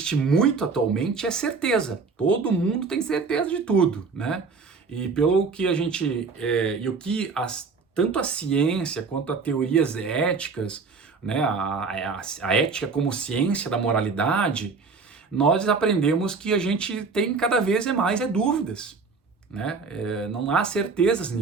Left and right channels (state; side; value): quieter; left; 4.7 dB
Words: muito atualmente é certeza. Todo mundo tem certeza de tudo, né? E pelo que a gente... tanto a ciência quanto as teorias éticas, né, a ética como ciência da moralidade, nós aprendemos que a gente tem cada vez mais dúvidas, né? Não há certezas